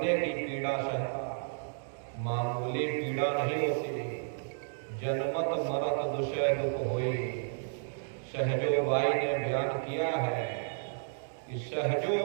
की पीड़ा सहता मामूली पीड़ा नहीं होती। जनमत मरत दुषय दुख होई। सहजो बाई ने बयान किया है कि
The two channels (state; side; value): silent; left; digital silence